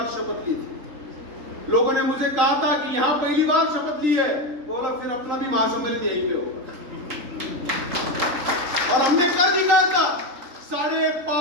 शपथ ली थी। लोगों ने मुझे कहा था कि यहां पहली बार शपथ ली है, बोला फिर अपना भी महासम्मेलन यहीं पे होगा। और हमने कर दिखाया था,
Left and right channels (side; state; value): left; late; 3.8 ms